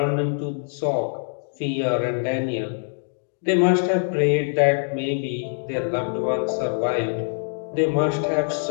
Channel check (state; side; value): silent; right; digital silence